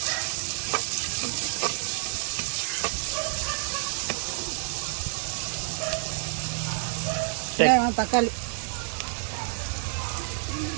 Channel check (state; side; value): silent; left; digital silence